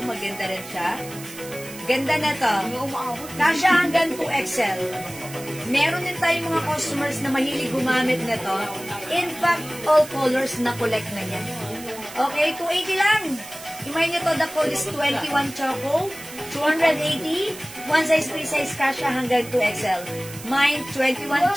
rin siya. Ganda na to. Kasya hanggang 2XL. Meron din tayong mga customers na mahilig gumamit na to. In fact, all colors na collect na niya. Okay, 280 lang. Imayin nyo to, the code is 21 Choco. 280. One size, free size, kasya hanggang 2XL. Mine, 21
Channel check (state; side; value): noise; right; hiss, 15 dB below the sound